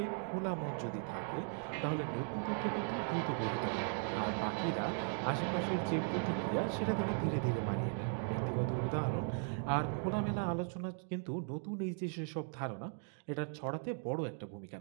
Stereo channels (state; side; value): silent; left; 52 dB below the other